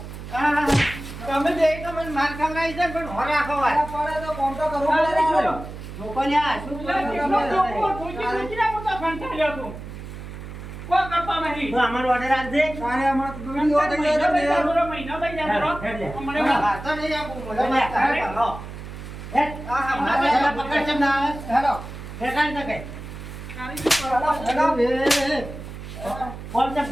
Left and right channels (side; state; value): right; noise; hum, 11 dB below the sound